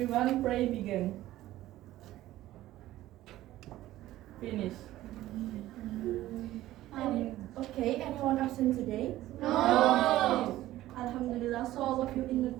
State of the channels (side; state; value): left; quieter; 15.2 dB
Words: pray begin. Finish. Okay, anyone absent today? No. Alhamdulillah, so all of you in a